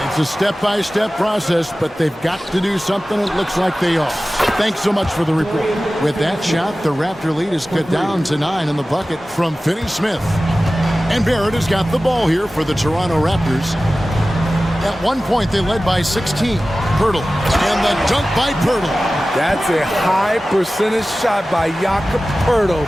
It's a step-by-step process, but they've got to do something. It looks like they are. Thanks so much for the report. With that shot, the Raptor lead is cut down to 9 in the bucket from Finney Smith. And Barrett has got the ball here for the Toronto Raptors. At one point, they led by 16. Pirtle. And the dunk by Pirtle. That's a high percentage shot by Jakob Pirtle.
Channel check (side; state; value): both; normal; correlation 0.96